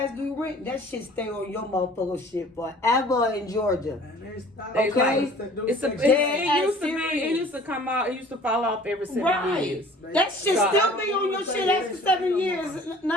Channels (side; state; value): both; normal; correlation 0.49